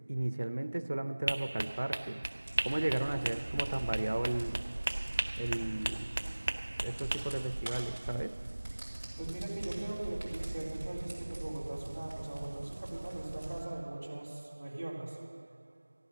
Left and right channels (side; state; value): both; inverted; correlation -1.00